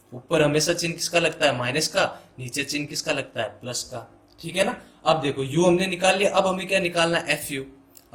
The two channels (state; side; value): identical; both; correlation 1.00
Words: ऊपर हमेशा चिन्ह किसका लगता है, माइनस का, नीचे चिन्ह किसका लगता है, प्लस का। ठीक है ना। अब देखो यू हमने निकाल लिया, अब हमें क्या निकालना है, एफ यू।